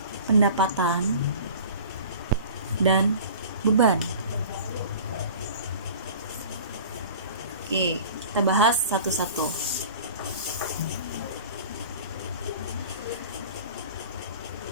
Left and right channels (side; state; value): both; inverted; correlation -0.42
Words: pendapatan, dan beban. Oke, kita bahas satu-satu.